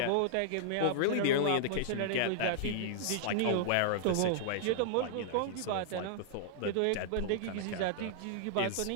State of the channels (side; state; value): both; different; correlation -0.01